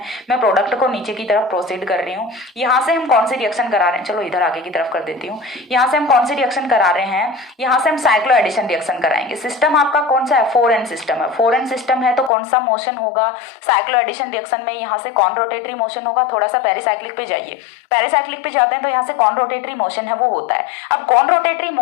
मैं प्रोडक्ट को नीचे की तरफ प्रोसीड कर रही हूँ, यहाँ से हम कौन सी रिएक्शन करा रहे हैं, चलो इधर आगे की तरफ कर देती हूँ। यहाँ से हम कौन सी रिएक्शन करा रहे हैं, यहाँ से हम साइक्लो एडिशन रिएक्शन कराएंगे। सिस्टम आपका कौन सा है, 4n सिस्टम है। 4n सिस्टम है तो कौन सा मोशन होगा, साइक्लो एडिशन रिएक्शन में यहाँ से कौन रोटेटरी मोशन होगा। थोड़ा सा पेरिसाइक्लिक पे जाइए, पेरिसाइक्लिक पे जाते हैं तो यहाँ से कौन रोटेटरी मोशन है वो होता है। अब कौन रोटेटरी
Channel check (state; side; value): drops out; right; at 12.3 s